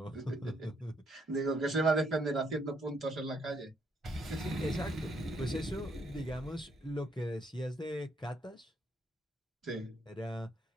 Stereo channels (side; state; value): both; normal; correlation 0.72